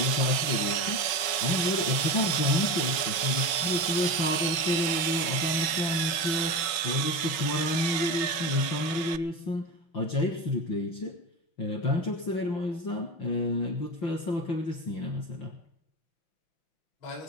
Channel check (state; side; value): late; right; 5.4 ms